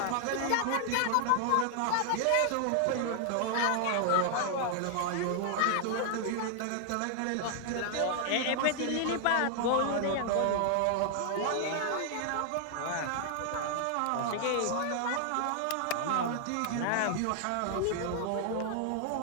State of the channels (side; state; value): both; different; correlation 0.00